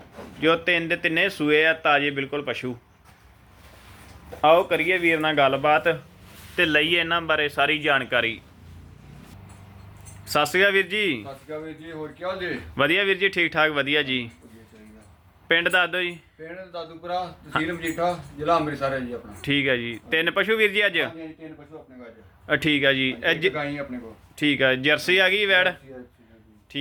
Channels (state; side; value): identical; both; correlation 1.00